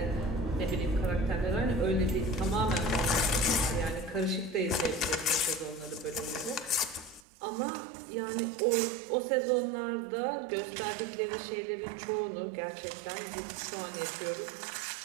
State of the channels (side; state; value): left; drops out; at 7.2 s